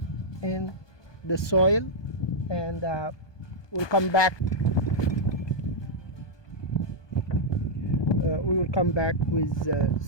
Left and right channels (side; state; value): right; late; 1.2 ms